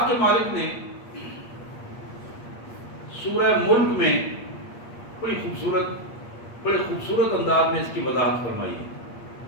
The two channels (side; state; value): right; late; 8.5 ms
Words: کے مالک نے سورہ ملک میں بڑے خوبصورت انداز میں اس کی وضاحت فرمائی ہے۔